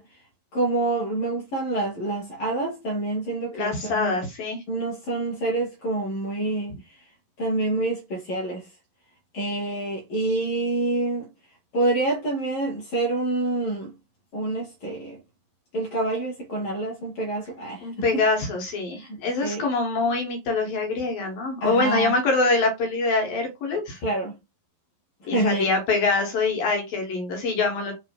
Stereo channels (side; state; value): right; late; 11 ms